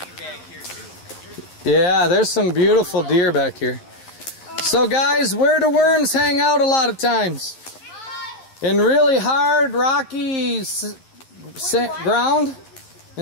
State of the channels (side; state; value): right; late; 11 ms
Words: Yeah, there's some beautiful deer back here. So guys, where do worms hang out a lot of times? In really hard, rocky ground?